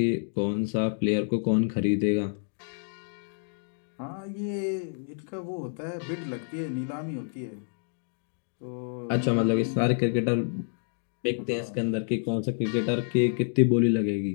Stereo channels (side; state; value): right; silent; digital silence